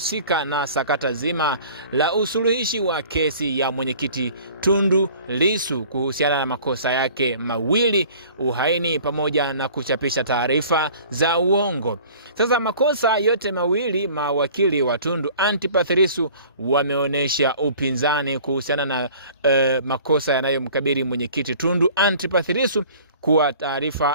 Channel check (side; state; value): both; inverted; correlation -0.48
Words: na sakata zima la usuluhishi wa kesi ya mwenyekiti Tundu Lissu kuhusiana na makosa yake mawili, uhaini pamoja na kuchapisha taarifa za uongo. Sasa makosa yote mawili, mawakili wa Tundu Antipas Lissu wameonyesha upinzani kuhusiana na makosa yanayomkabili mwenyekiti Tundu Antipas Lissu kuwa